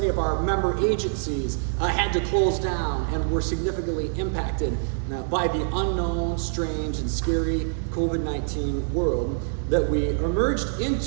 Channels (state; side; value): silent; left; digital silence